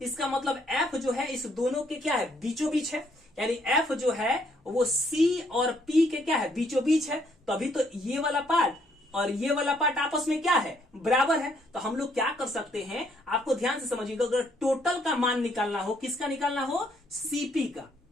इसका मतलब F जो है इस दोनों के क्या है, बीचों बीच है। यानी F जो है वो C और P के क्या है, बीचों बीच है। तभी तो ये वाला पार्ट और ये वाला पार्ट आपस में क्या है, बराबर है। तो हम लोग क्या कर सकते हैं, आपको ध्यान से समझिएगा, अगर टोटल का मान निकालना हो, किसका निकालना हो, CP का।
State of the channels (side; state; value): both; normal; correlation 0.69